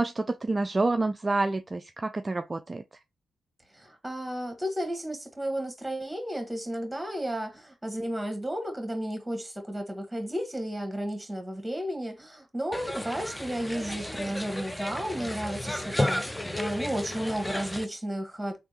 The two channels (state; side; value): normal; both; correlation 0.96